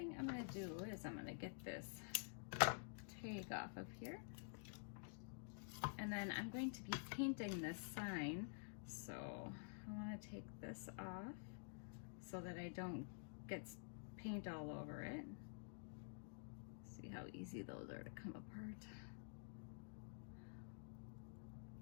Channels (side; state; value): right; silent; digital silence